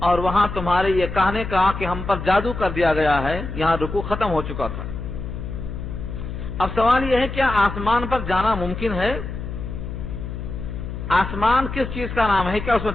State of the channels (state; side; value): noise; left; hum, 7 dB below the sound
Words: اور وہاں تمہارے یہ کہنے کا کہ ہم پر جادو کر دیا گیا ہے، یہاں رکوع ختم ہو چکا تھا۔ اب سوال یہ ہے کیا آسمان پر جانا ممکن ہے؟ آسمان کس چیز کا نام ہے؟ کیا اس میں